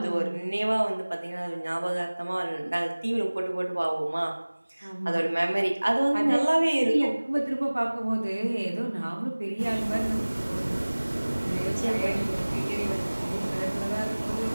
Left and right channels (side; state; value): both; inverted; correlation -1.00